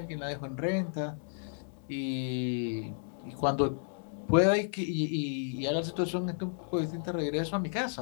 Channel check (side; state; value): right; silent; digital silence